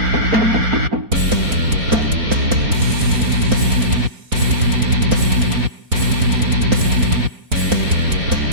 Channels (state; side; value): late; left; 4.4 ms